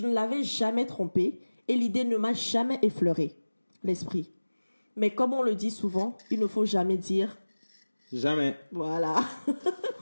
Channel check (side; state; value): both; inverted; correlation -1.00